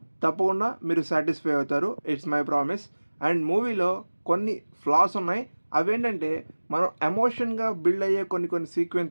తప్పకుండా మీరు సాటిస్ఫై అవుతారు. It's my promise. అండ్ మూవీలో కొన్ని ఫ్లాస్ ఉన్నాయి. అవేంటంటే, మనం ఎమోషన్గా బిల్డ్ అయ్యే కొన్ని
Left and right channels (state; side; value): inverted; both; correlation -1.00